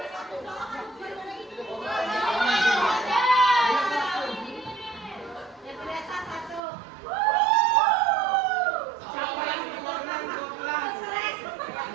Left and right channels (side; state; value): left; drops out; at 6.6 s